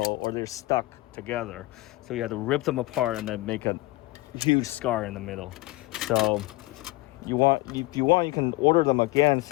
or they're stuck together. So you have to rip them apart and then make a huge scar in the middle. So if you want, you can order them again and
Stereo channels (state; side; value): quieter; right; 20.3 dB